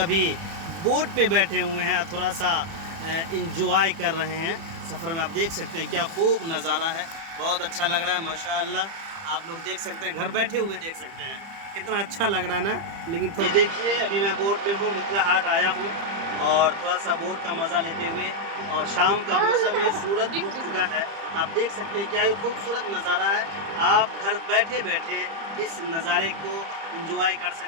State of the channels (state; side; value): late; left; 30 ms